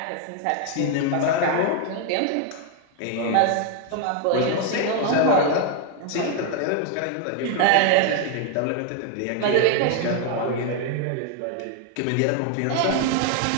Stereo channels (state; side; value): different; both; correlation 0.00